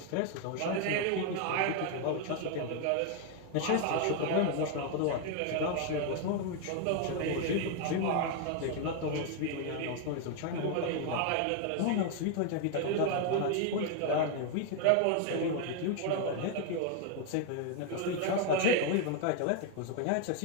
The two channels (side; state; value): both; different; correlation 0.01